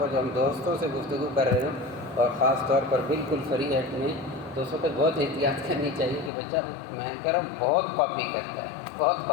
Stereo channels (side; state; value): right; drops out; at 6.3 s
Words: جب ہم دوستوں سے گفتگو کر رہے ہوں اور خاص طور پر بالکل فری ہیڈ میں، تو اس وقت بہت احتیاط کرنی چاہیے کہ بچہ میں کہہ رہا ہوں بہت کاپی کرتا ہے، بہت